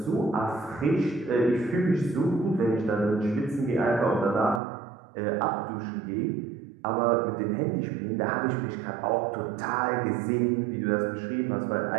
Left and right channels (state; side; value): drops out; left; at 4.6 s